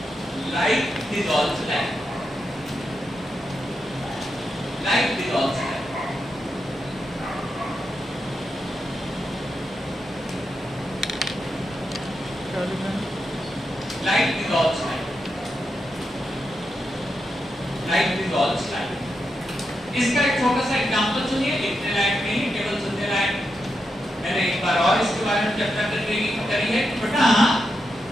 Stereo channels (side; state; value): both; normal; correlation 0.85